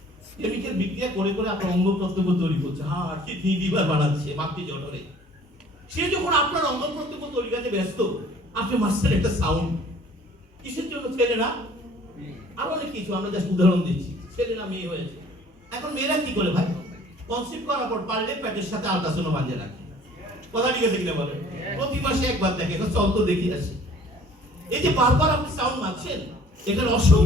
কেমিক্যাল বিক্রিয়া করে করে আপনার অঙ্গ প্রত্যঙ্গ তৈরি করছে, হার্ট কিডনি লিভার বানাচ্ছে মাতৃ জঠরে। সে যখন আপনার অঙ্গ প্রত্যঙ্গ তৈরি করতে ব্যস্ত, আপনি মাসের একটা সাউন্ড কিসের জন্য? ছেলে না, আর অনেক কিছু, আমরা জাস্ট উদাহরণ দিচ্ছি। ছেলে না মেয়ে হয়েছে, এখন মেয়েরা কি করে ভাই? কনসিভ করার পর পারলে পেটের সাথে আল্ট্রাসাউন্ড বাঁধিয়ে রাখে। কথা ঠিক আছে কিনা বলেন? প্রতি মাসে একবার দেখে, চল তো দেখি আসি। এই যে বারবার আপনি সাউন্ড মারছেন, এখানে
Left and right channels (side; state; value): both; normal; correlation 0.53